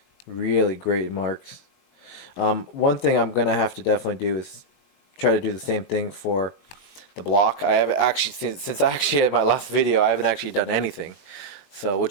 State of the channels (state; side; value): late; right; 21 ms